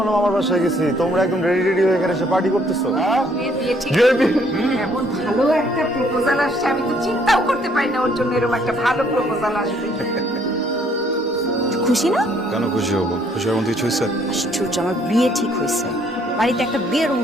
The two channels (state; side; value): normal; both; correlation 0.65